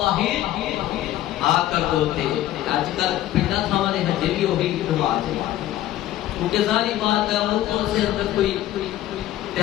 آ کر دھوتے. آج کل پنڈا تھا ہمارے حجے بھی ہوگی نماز ہے، کیونکہ ظاہری بات ہے وہ سے اندر کوئی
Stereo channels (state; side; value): quieter; right; 13.9 dB